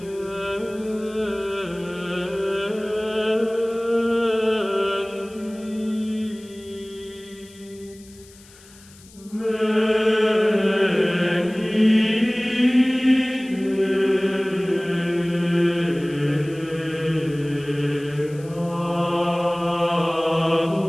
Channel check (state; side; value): noise; left; hiss, 24 dB below the sound